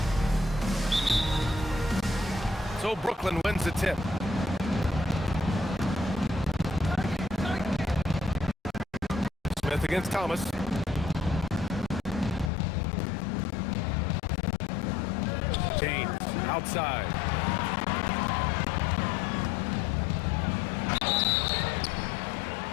So Brooklyn wins the tip. Smith against Thomas. James outside.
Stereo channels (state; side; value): drops out; right; at 12.5 s